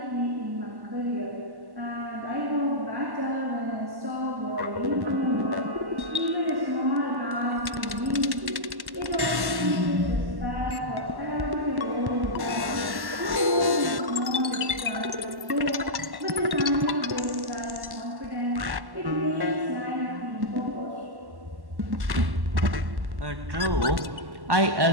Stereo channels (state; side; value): late; left; 1.1 ms